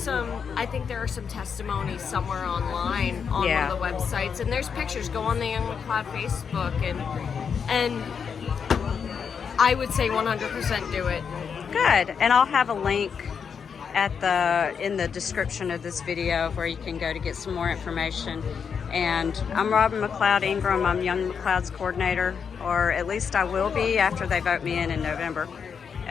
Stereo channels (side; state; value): right; quieter; 6.6 dB